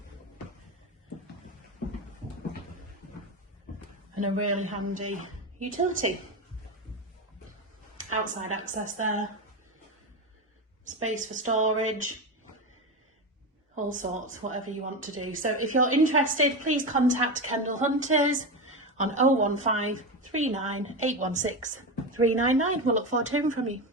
And a really handy utility. Outside access there. Space for storage. All sorts, whatever you want to do. So if you're interested, please contact Kendal Hunters on 015 39 816 399. We'll look forward to hearing from you.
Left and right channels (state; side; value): normal; both; correlation 0.17